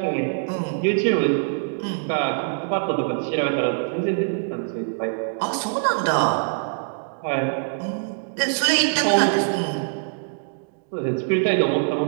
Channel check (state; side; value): silent; left; digital silence